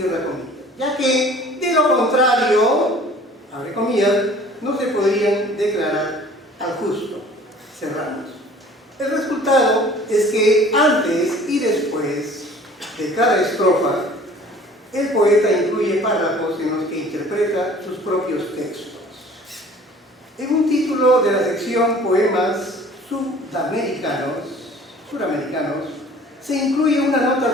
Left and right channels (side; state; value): both; normal; correlation 0.49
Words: comillas, ya que de lo contrario, abre comillas, no se podrían declarar al justo, cerramos. El resultado es que antes y después de cada estrofa, el poeta incluye párrafos en los que interpreta sus propios textos. En un título de la sección Poemas Sudamericanos, se incluye una